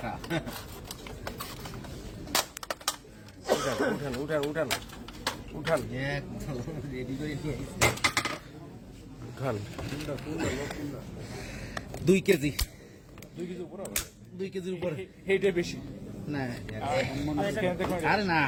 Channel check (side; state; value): both; identical; correlation 1.00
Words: উঠান উঠান উঠান উঠান রেডি করে নিয়ে উঠান। 2 কেজি 2 কেজি উপরে হবে, 2 কেজির উপরে এইটা বেশি না আরে না